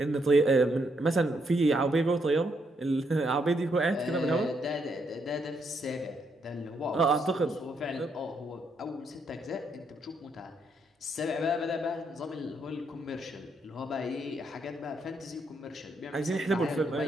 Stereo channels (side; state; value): both; normal; correlation 0.76